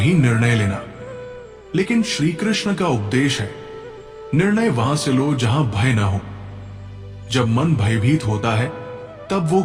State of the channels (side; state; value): both; identical; correlation 1.00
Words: निर्णय लेना, लेकिन श्री कृष्ण का उपदेश है निर्णय वहां से लो जहां भय ना हो। जब मन भयभीत होता है तब वो